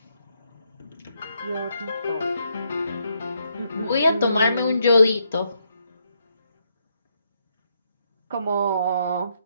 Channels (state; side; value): inverted; both; correlation -0.77